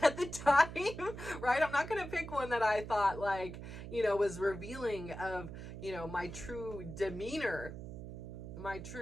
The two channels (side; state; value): right; noise; hum, 10 dB below the sound